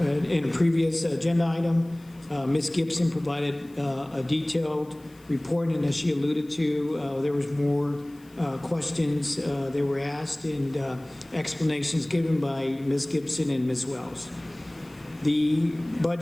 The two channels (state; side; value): noise; left; hiss, 29 dB below the sound